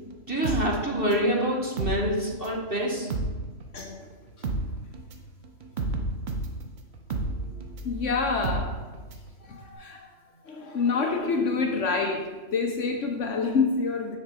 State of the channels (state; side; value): late; right; 3.0 ms